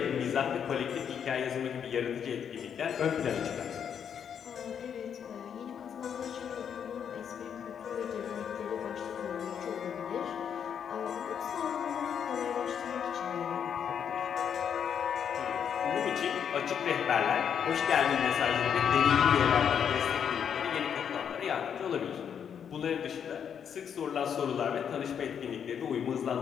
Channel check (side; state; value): right; quieter; 8.0 dB